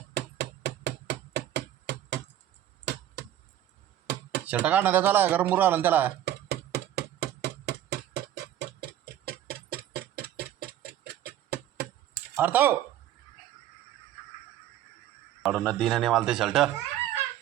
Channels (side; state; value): left; quieter; 12.0 dB